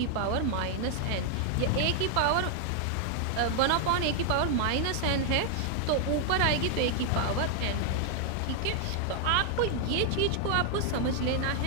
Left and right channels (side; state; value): both; different; correlation 0.00